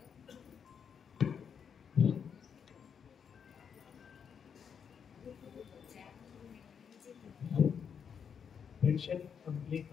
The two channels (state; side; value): quieter; right; 7.1 dB